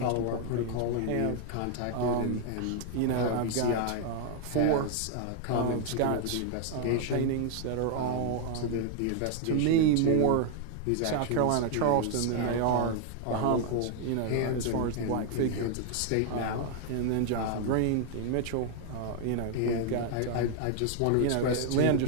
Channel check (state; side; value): different; both; correlation 0.00